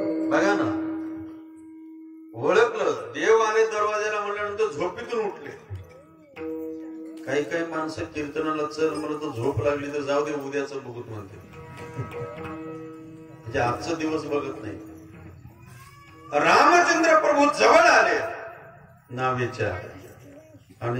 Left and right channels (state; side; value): identical; both; correlation 1.00